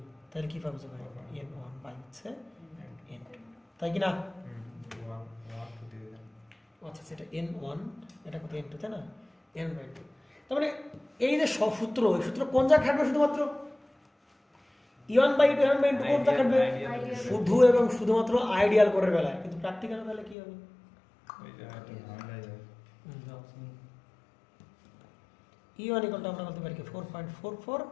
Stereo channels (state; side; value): drops out; right; at 20.4 s